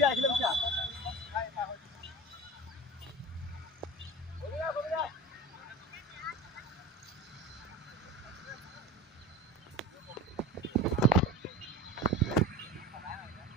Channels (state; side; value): normal; both; correlation 0.32